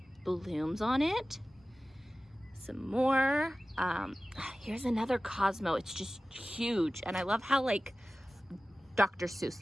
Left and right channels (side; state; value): both; normal; correlation 0.96